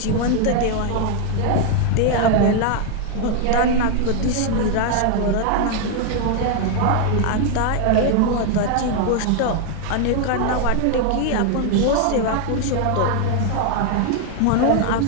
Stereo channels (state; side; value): different; both; correlation 0.00